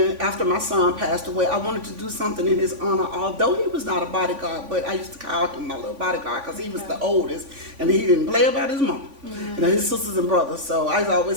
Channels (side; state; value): left; late; 3.5 ms